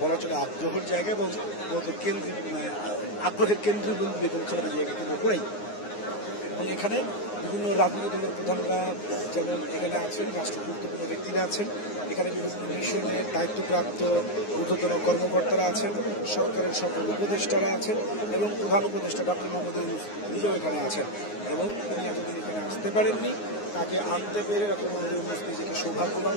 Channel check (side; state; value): right; late; 9.6 ms